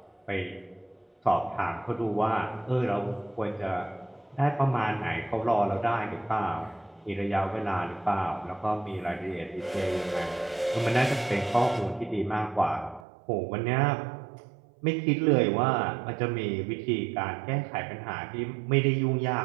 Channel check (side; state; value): left; drops out; at 13.1 s